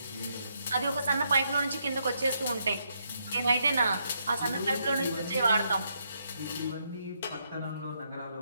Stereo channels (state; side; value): inverted; both; correlation -0.77